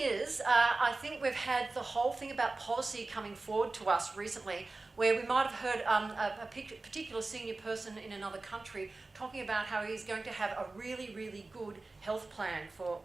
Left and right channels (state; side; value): quieter; left; 3.4 dB